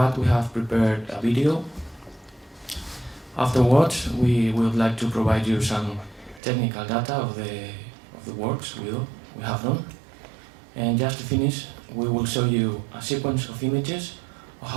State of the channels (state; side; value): drops out; left; at 6.4 s